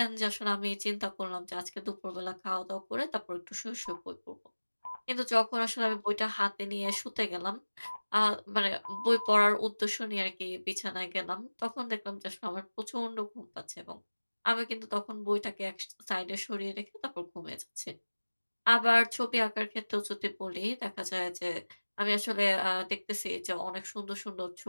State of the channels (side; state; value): both; inverted; correlation -1.00